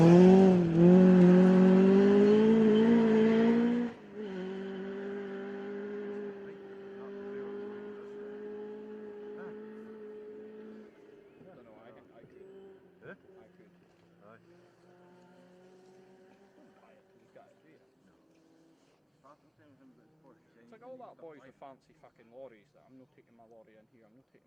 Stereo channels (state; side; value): identical; both; correlation 1.00